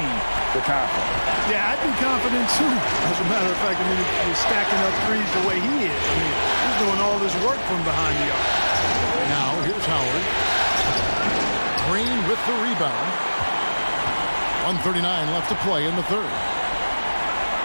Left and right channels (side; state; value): both; inverted; correlation -1.00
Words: the confidence. Yeah, I'd be confident too. As a matter of fact, I mean, he's stacking up threes the way he is. I mean, he's doing all this work from behind the arc. Now, here's Howard. Green with the rebound. 1:39 left to play in the third.